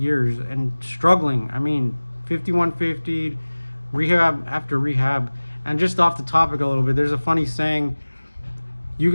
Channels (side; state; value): both; inverted; correlation -1.00